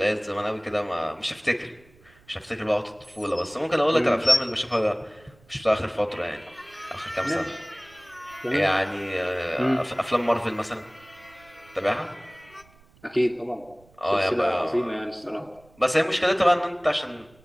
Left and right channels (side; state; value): right; noise; rumble, 29 dB below the sound